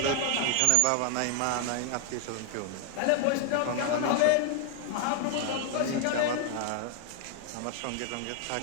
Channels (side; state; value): both; different; correlation 0.00